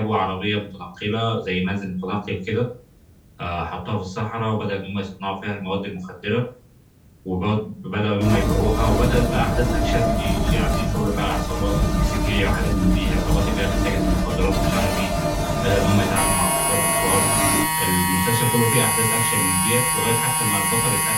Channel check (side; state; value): both; identical; correlation 1.00